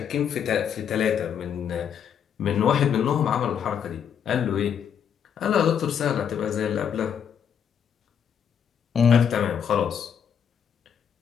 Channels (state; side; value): quieter; right; 8.1 dB